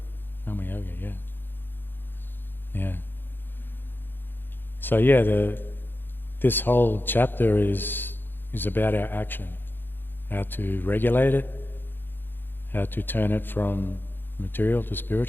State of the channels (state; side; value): late; right; 0.098 ms